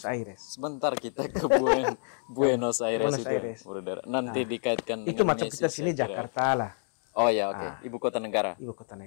Aires. Sebentar kita ke Buenos Aires itu, Bruder. Nanti dikaitkan itu dengan Yesus. Itu macam kita sini Jakarta lah. Oh ya, oke. Ibu kota negara.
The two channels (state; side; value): silent; right; digital silence